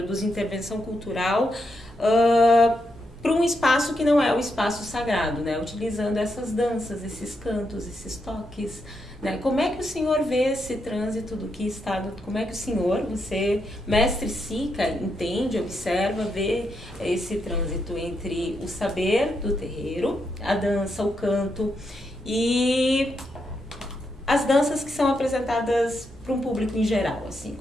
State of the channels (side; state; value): both; normal; correlation 0.82